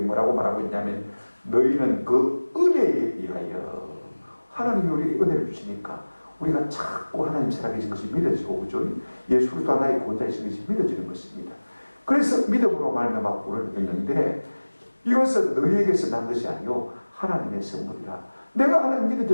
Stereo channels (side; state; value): both; inverted; correlation -1.00